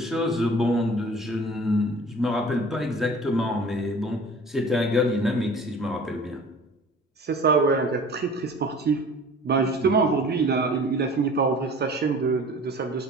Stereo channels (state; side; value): normal; both; correlation 0.45